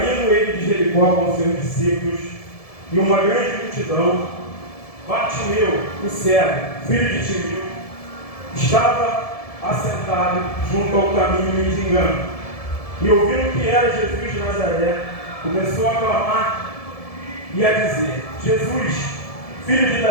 ele de Jericó com seus discípulos e uma grande multidão, Bartimeu, o cego, filho de Timeu, estava assentado junto ao caminho mendigando, e ouvindo que era Jesus de Nazaré, começou a clamar e a dizer: Jesus, filho de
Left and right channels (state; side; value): late; right; 1.7 ms